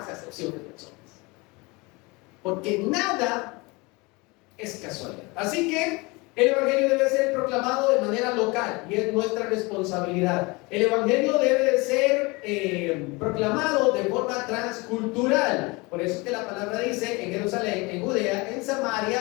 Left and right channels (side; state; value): right; quieter; 25.7 dB